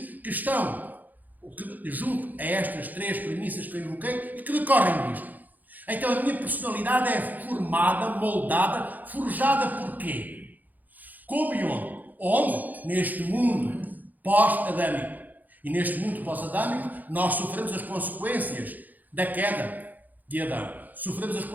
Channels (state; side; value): late; left; 0.083 ms